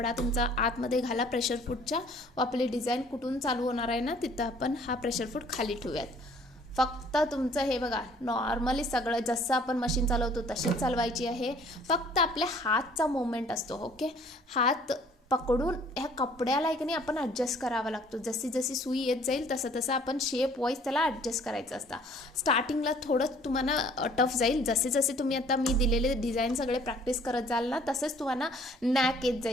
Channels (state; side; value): normal; both; correlation 0.56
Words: तुमचा आतमध्ये घाला प्रेशर फूटच्या. व आपली डिझाईन कुठून चालू होणार आहे ना तिथं आपण हा प्रेशर फूट खाली ठेवूयात. फक्त तुमचं हे बघा, नॉर्मली सगळं जसं आपण मशीन चालवतो तशीच चालवायची आहे. फक्त आपल्या हातचा मुवमेंट असतो. ओके, हात पकडून ह्या कपड्याला एक नाही आपण ॲडजस्ट करावा लागतो. जशी जशी सुई येत जाईल तसं तसं आपण शेप वाईज त्याला ॲडजस्ट करायचं असतं. स्टार्टिंगला थोडं तुम्हाला टफ जाईल. जसे जसे तुम्ही आता मी दिलेले डिझाईन सगळे प्रॅक्टिस करत जाल ना तसंच तुम्हाला नॅक येत